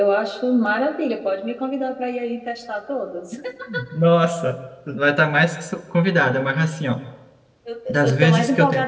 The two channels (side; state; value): both; identical; correlation 1.00